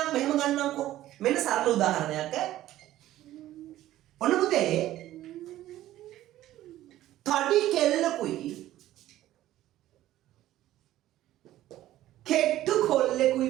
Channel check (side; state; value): left; quieter; 14.2 dB